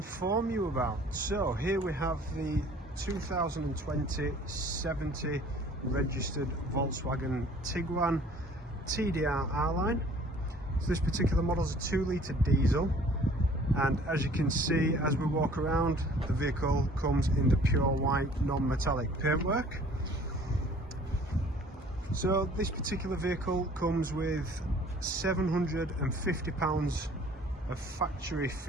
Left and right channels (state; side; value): normal; both; correlation 0.52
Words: you about. So here we have the 2020 70 registered Volkswagen Tiguan TDR R-Line. So this particular model is a 2-litre diesel, and as you can see as we walk around, the vehicle comes in the pure white non-metallic paintwork. So this particular vehicle comes with £750 of factory